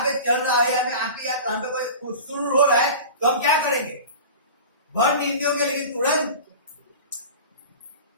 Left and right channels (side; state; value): both; inverted; correlation -0.35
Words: पे चल रहा है या फिर आंख या कान पे कोई शुरू हो रहा है तो हम क्या करेंगे? भर नींद होंगे लेकिन तुरंत